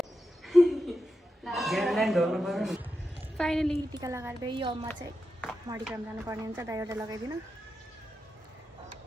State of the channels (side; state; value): both; normal; correlation 0.89